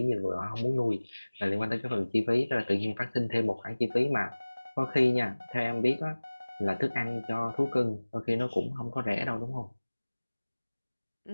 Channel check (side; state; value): both; inverted; correlation -1.00